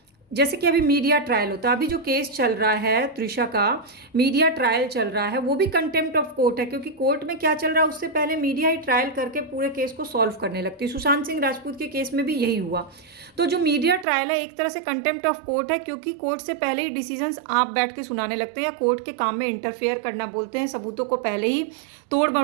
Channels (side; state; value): left; drops out; at 14.1 s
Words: जैसे कि अभी मीडिया ट्रायल होता है, अभी जो केस चल रहा है त्रिशा का, मीडिया ट्रायल चल रहा है, वो भी कंटेम्प्ट ऑफ कोर्ट है, क्योंकि कोर्ट में क्या चल रहा है उससे पहले मीडिया ही ट्रायल करके पूरे केस को सॉल्व करने लगती है। सुशांत सिंह राजपूत के केस में भी यही हुआ। तो जो मीडिया ट्रायल है एक तरह से कंटेम्प्ट ऑफ कोर्ट है, क्योंकि कोर्ट से पहले ही डिसीजंस आप बैठ के सुनाने लगते हैं या कोर्ट के काम में इंटरफेयर करना बोलते हैं, सबूतों को पहले ही तोड़